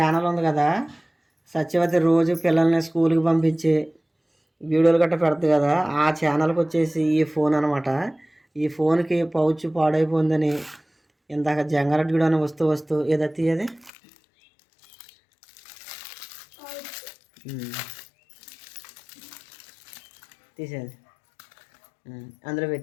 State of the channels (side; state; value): right; drops out; at 13.9 s